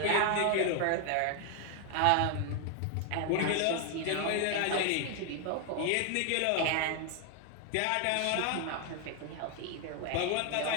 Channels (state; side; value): different; both; correlation 0.00